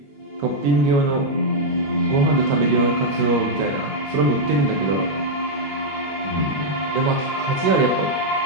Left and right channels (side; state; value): left; late; 21 ms